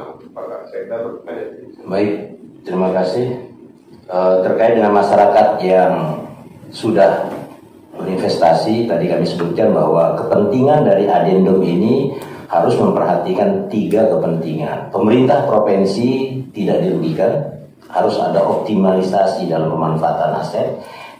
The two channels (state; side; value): identical; both; correlation 1.00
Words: Pak Sekda atau Pak Kajati. Baik, terima kasih. Terkait dengan masyarakat yang sudah berinvestasi, tadi kami sebutkan bahwa kepentingan dari adendum ini harus memperhatikan 3 kepentingan. Pemerintah provinsi tidak dirugikan, harus ada optimalisasi dalam pemanfaatan aset.